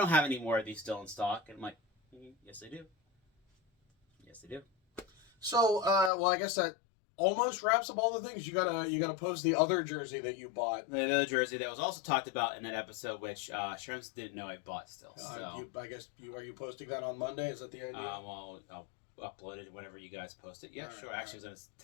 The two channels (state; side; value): drops out; right; at 6.1 s